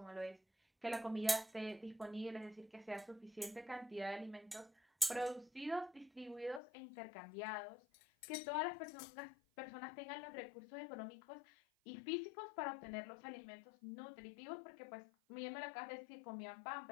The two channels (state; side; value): drops out; right; at 6.6 s